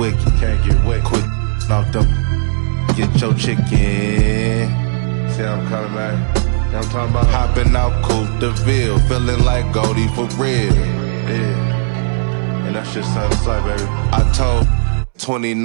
Quit off them, get your chicken. See how I'm coming back? You know I'm talking about? Hopping out Coupe de Ville, feeling like Goldie for real. Yeah. And that's just something like, baby. I told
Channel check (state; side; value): silent; left; digital silence